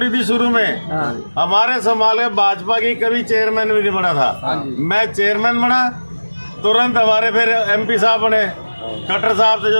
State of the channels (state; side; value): inverted; both; correlation -1.00